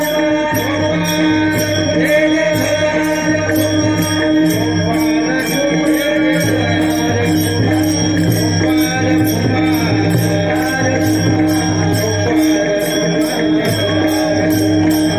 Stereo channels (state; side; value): noise; left; hum, 20 dB below the sound